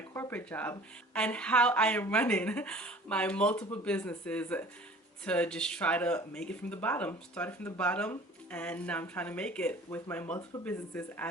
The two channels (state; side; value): normal; both; correlation 0.46